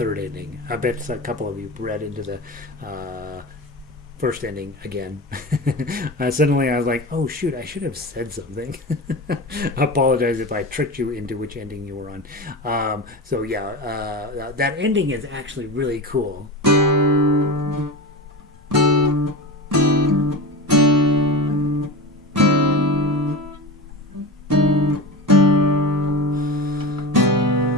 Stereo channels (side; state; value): both; normal; correlation 0.25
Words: ending. I bet a couple of you read into the first ending again. Suddenly I was like, oh shoot, I should have said something. I apologize if I tricked you into which ending you were on. So yeah, that ending is actually really cool.